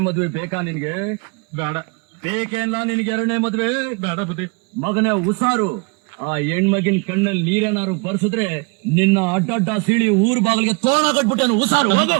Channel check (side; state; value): left; quieter; 31.4 dB